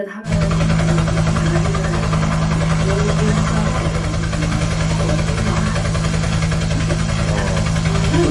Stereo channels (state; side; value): identical; both; correlation 1.00